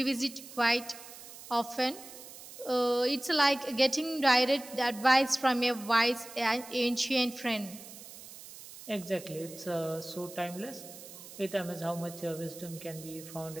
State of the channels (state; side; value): noise; right; hiss, 15 dB below the sound